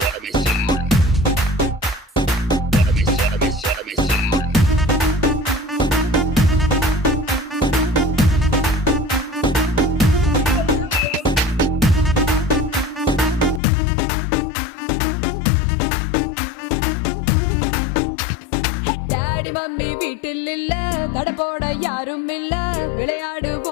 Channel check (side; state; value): right; drops out; at 13.6 s